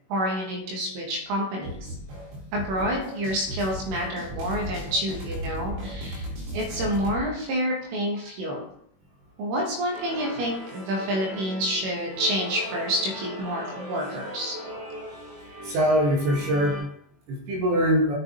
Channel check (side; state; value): left; late; 21 ms